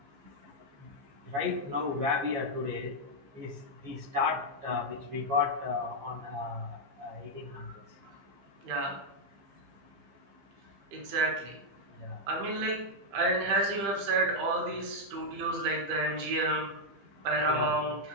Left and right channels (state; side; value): late; left; 15 ms